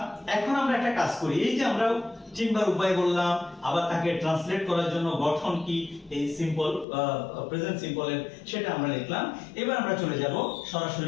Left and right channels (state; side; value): drops out; right; at 6.9 s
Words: এখন আমরা একটা কাজ করি। এই যে আমরা তিনবার উপায় বললাম, আবার তাকে ট্রান্সলেট করার জন্য গঠন কি এই সিম্পল প্রেজেন্ট সিম্পলের সেটা আমরা লিখলাম। এবার আমরা চলে যাব